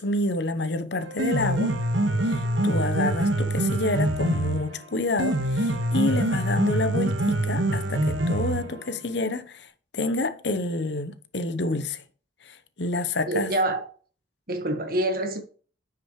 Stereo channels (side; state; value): both; normal; correlation 0.44